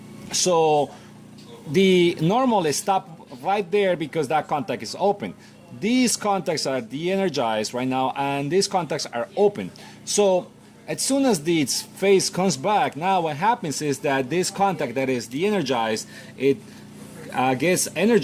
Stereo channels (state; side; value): identical; both; correlation 1.00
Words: So the normal is stopped right there because that contact is open. these contacts are de-energized right now, and these contacts are open. So as soon as this phase comes back, now what happens is that this contact that is de-energized, it gets